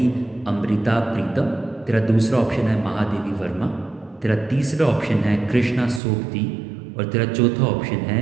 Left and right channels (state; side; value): drops out; left; at 6.0 s